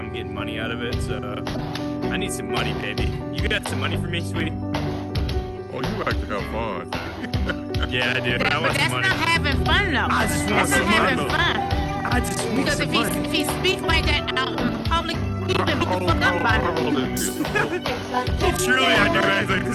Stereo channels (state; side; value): identical; both; correlation 1.00